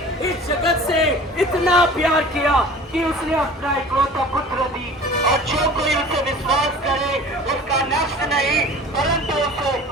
इस जगत से इतना प्यार किया कि उसने अपना इकलौता पुत्र दी और जो कोई उसे विश्वास करे उसका नष्ट नहीं परंतु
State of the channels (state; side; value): normal; both; correlation 0.42